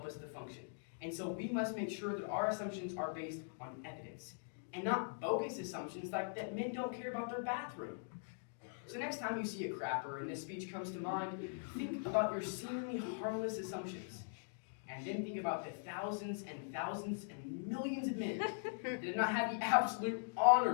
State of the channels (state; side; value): silent; right; digital silence